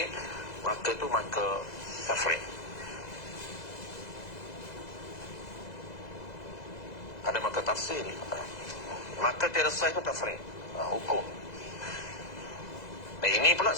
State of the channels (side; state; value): right; late; 2.0 ms